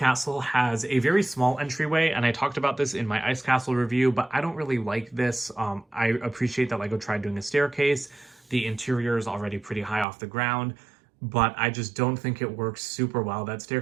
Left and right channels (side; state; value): left; drops out; at 10.1 s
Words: has a very small entryway, and I talked about this in my Ice Castle review, but I don't really like this. I appreciate that LEGO tried doing a staircase. The interior is already pretty high off the ground, but I just don't think it works super well. That